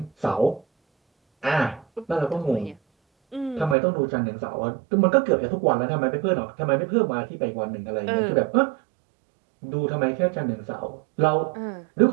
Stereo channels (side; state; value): left; drops out; at 3.8 s